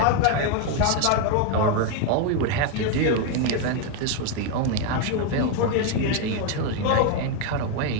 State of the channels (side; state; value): both; different; correlation 0.01